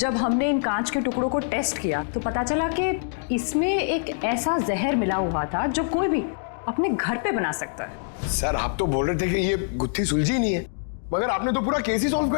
हमने इन कांच के टुकड़ों को टेस्ट किया तो पता चला कि इसमें एक ऐसा जहर मिला हुआ था जो कोई भी अपने घर पे बना सकता है। सर, आप तो बोल रहे थे कि ये गुत्थी सुलझी नहीं है, मगर आपने तो पूरा केस ही सॉल्व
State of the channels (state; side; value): silent; right; digital silence